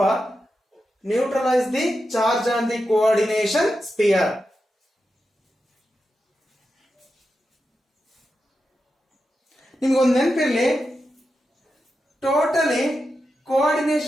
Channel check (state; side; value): normal; both; correlation 0.89